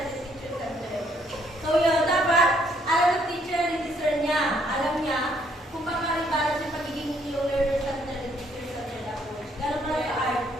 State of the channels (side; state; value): both; normal; correlation 0.68